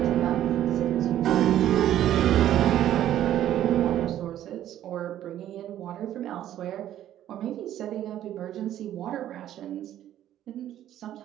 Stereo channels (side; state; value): left; quieter; 12.0 dB